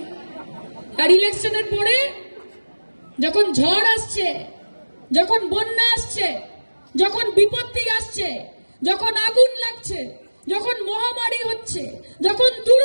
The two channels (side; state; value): both; inverted; correlation -1.00